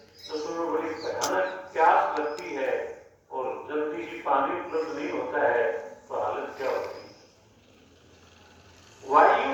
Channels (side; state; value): both; identical; correlation 1.00